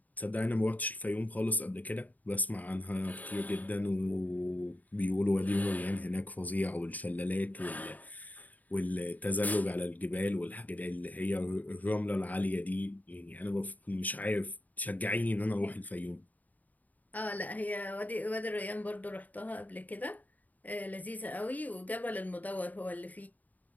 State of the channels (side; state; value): right; late; 0.079 ms